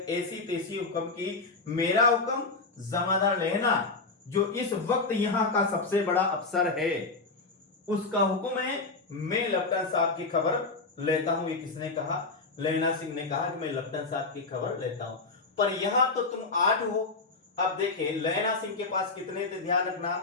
ऐसी तेसी हुक्म की, मेरा हुक्म जमादार लेना जो इस वक्त यहां का सबसे बड़ा अफसर है, उसका हुक्म है। मैं लपटन साहब की खबर लेता हूं। ये किसने कहा? लेना सिंह ने कहा कि मैं लपटन साहब की खबर लेता हूं। पर यहां तो तुम 8 हो। अब देखिए लेना सिंह के पास कितने थे? ध्यान रखना,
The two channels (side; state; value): right; quieter; 3.8 dB